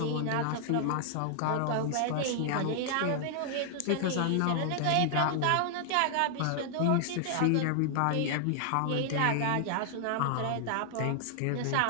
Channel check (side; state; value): both; different; correlation -0.01